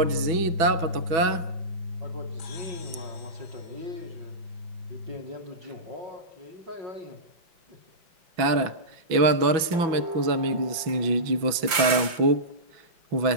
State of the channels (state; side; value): late; left; 5.7 ms